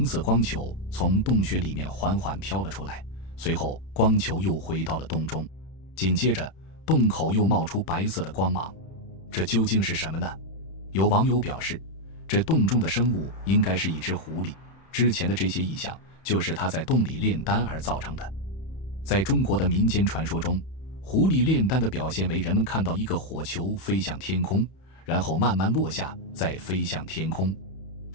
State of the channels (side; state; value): right; late; 31 ms